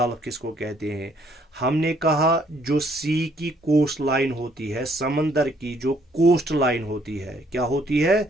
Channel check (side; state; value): both; normal; correlation 0.66